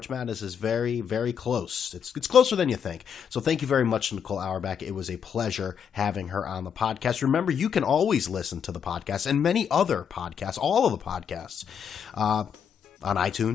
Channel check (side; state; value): right; quieter; 7.6 dB